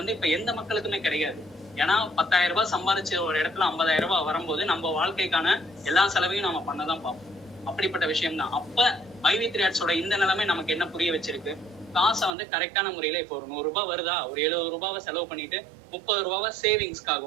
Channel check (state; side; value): drops out; left; at 12.3 s